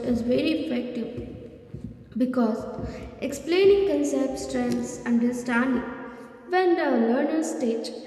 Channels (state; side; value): identical; both; correlation 1.00